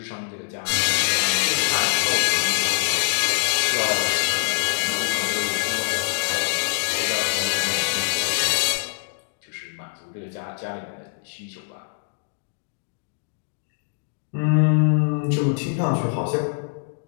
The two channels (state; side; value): silent; right; digital silence